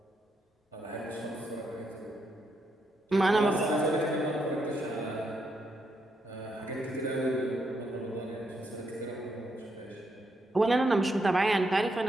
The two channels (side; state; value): both; normal; correlation 0.79